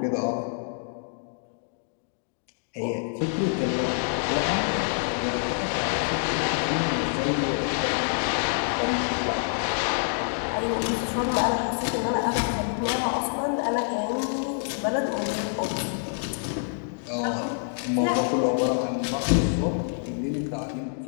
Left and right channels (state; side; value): silent; right; digital silence